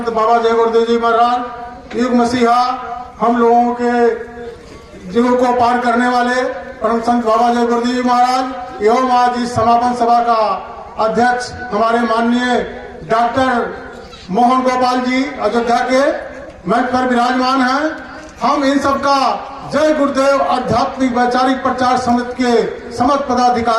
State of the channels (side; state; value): both; identical; correlation 1.00